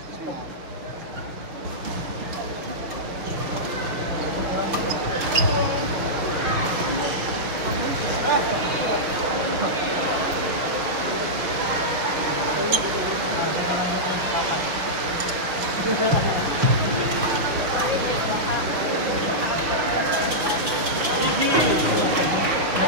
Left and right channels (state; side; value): late; left; 6.2 ms